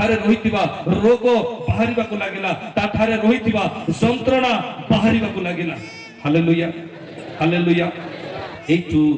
रहितिबा रोग बाहरिबा को लागिला ता ठारे रहितिबा यंत्रणा बाहरिबा को लागिला हालेलुया हालेलुया एतु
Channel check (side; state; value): both; identical; correlation 1.00